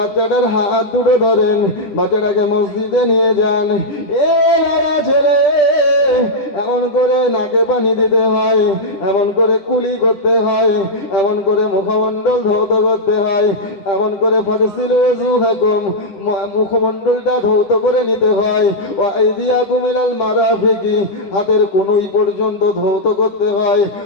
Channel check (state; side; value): late; right; 10 ms